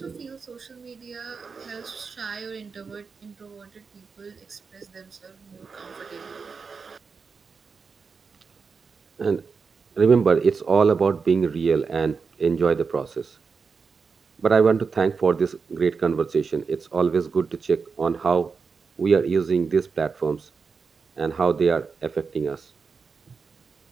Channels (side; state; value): left; quieter; 5.2 dB